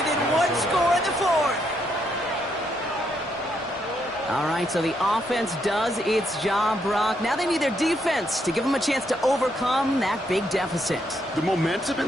1 score in the 4th. All right, so the offense does its job, Brock. Now they need their defense to give them a chance to overcome that big deficit. The momentum in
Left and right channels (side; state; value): both; normal; correlation 0.76